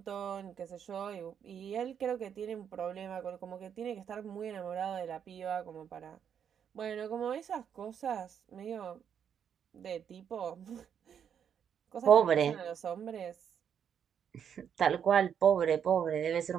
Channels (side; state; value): left; quieter; 8.1 dB